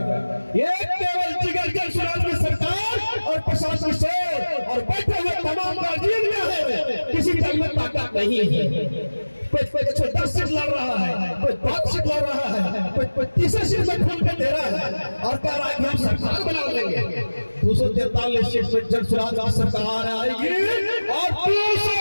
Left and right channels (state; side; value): inverted; both; correlation -1.00